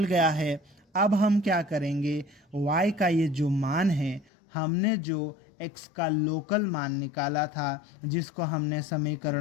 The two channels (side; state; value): right; drops out; at 4.3 s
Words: गया है। अब हम क्या करेंगे, y का ये जो मान है, हमने जो x का लोकल मान निकाला था, जिसको हमने